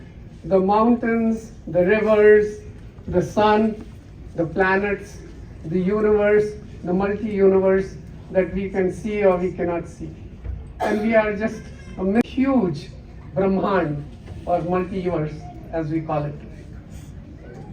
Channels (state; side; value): identical; both; correlation 1.00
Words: the mountains, the rivers, the sun, the planets, the universe, the multi-universe that we can see or we cannot see. And we are just a huge Brahman or multi-universe, as we call it.